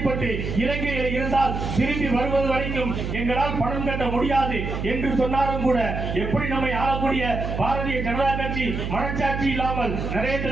இலங்கையில் இருந்தால் திரும்பி வருவது வரைக்கும் எங்களால் பணம் கட்ட முடியாது என்று சொன்னாலும் கூட, எப்படி நம்மை ஆளக்கூடிய பாரதிய ஜனதா கட்சி மனச்சாட்சி இல்லாமல்,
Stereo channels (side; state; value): right; noise; hum, 4 dB below the sound